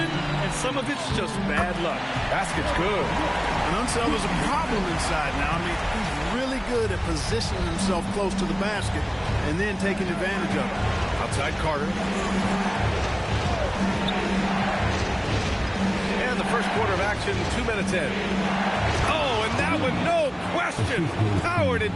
and some of it's just bad luck. Basket's good. And Unseld is a problem inside now. I mean, he's really good at positioning himself close to the basket and then taking advantage of it. Outside Carter. And the first quarter of action, 2 minutes in. Oh, and that one, no question, powered it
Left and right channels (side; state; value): both; identical; correlation 1.00